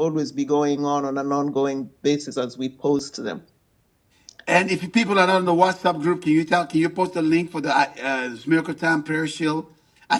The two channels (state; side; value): identical; both; correlation 1.00